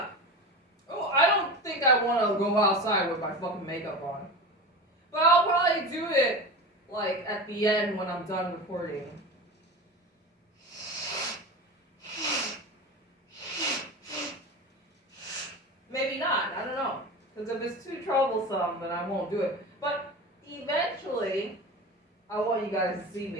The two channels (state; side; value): normal; both; correlation 0.28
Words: Oh, I don't think I want to go outside with my fucking makeup on. But I'll probably do it, like, at the end when I'm done recording. Maybe not, I don't know. Because if it's too troublesome, then I won't do it. But eventually, I want you guys to see